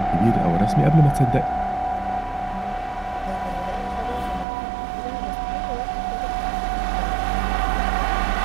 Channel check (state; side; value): drops out; left; at 4.5 s